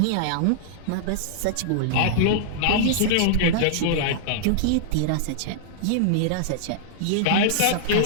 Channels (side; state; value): both; different; correlation -0.01